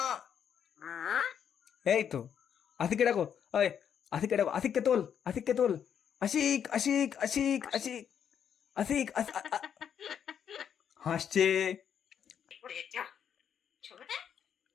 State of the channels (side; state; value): right; quieter; 8.4 dB